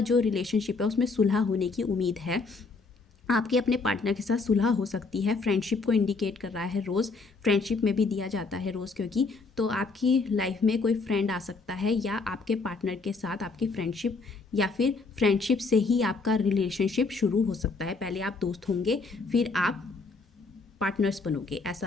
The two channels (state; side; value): quieter; right; 4.0 dB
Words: जो रिलेशनशिप है उसमें सुलह होने की उम्मीद है। आपके अपने पार्टनर के साथ सुलह हो सकती है। फ्रेंडशिप को इंडिकेट कर रहा है रोज़, फ्रेंडशिप में भी दिया जाता है रोज़, क्योंकि तो आपकी लाइफ में कोई फ्रेंड आ सकता है या आपके पार्टनर के साथ आपकी फ्रेंडशिप, या फिर फ्रेंडशिप से ही आपका रिलेशनशिप शुरू हो सकता है। पहले आप दोस्त होंगे, फिर आप पार्टनर्स बनोगे,